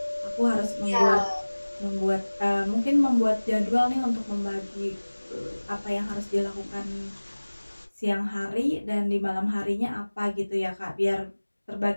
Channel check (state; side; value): inverted; both; correlation -1.00